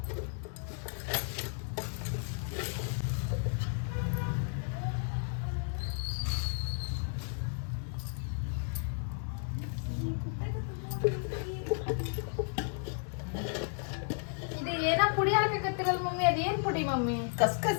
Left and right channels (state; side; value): silent; right; 55 dB below the other